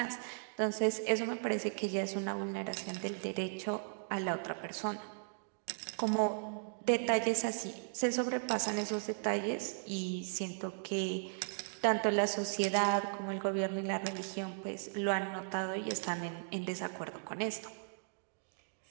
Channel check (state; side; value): silent; left; digital silence